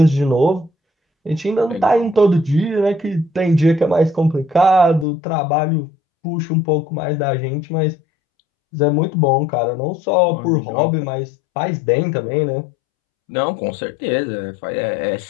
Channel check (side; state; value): right; drops out; at 5.1 s